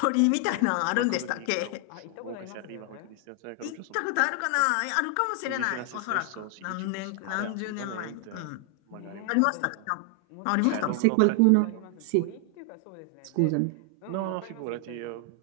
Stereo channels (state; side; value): different; both; correlation 0.00